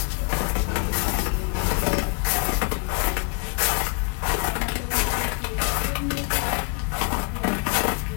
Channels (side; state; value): right; quieter; 36.3 dB